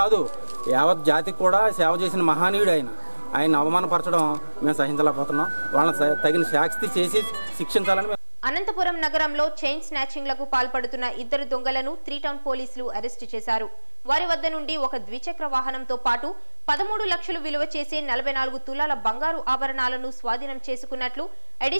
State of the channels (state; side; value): inverted; both; correlation -1.00